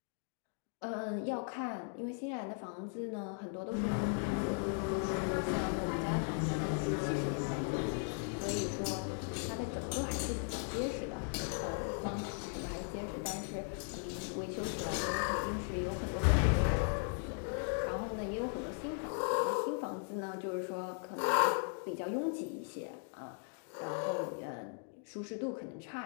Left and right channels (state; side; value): silent; right; 53 dB below the other